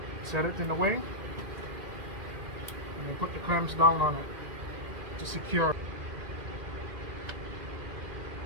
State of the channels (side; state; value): left; late; 2.1 ms